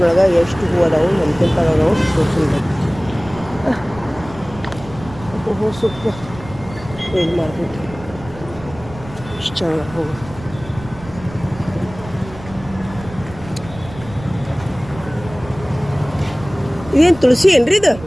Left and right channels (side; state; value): right; noise; rumble, 16 dB below the sound